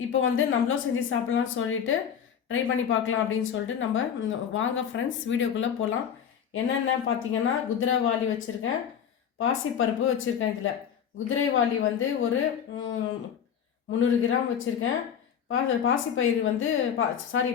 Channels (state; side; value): quieter; right; 8.2 dB